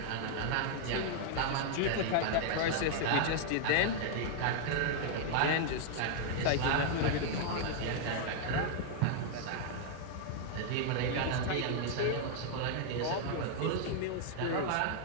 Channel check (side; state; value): both; different; correlation 0.00